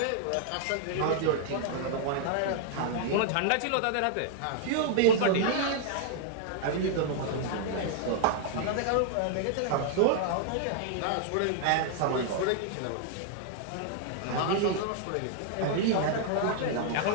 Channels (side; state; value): both; different; correlation -0.01